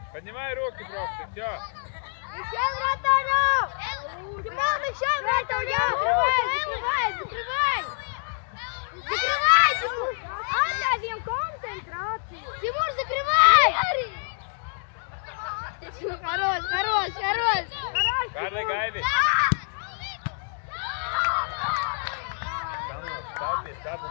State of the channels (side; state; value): right; silent; digital silence